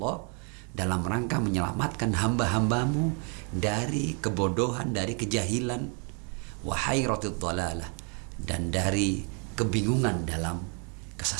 dalam rangka menyelamatkan hamba-hambamu dari kebodohan, dari kejahilan, wa hayratid dalalah, dan dari kebingungan dalam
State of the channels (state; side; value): quieter; left; 38.0 dB